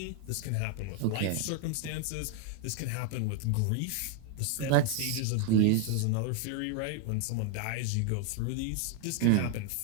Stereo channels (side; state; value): both; different; correlation 0.00